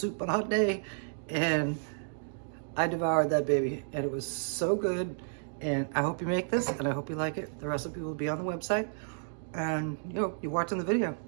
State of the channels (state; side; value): silent; left; digital silence